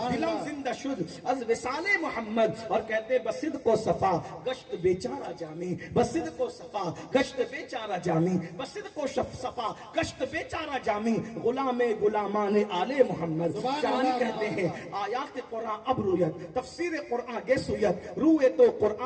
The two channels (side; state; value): both; identical; correlation 1.00